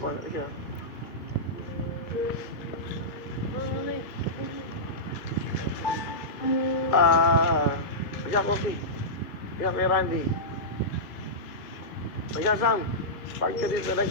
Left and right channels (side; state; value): right; late; 2.5 ms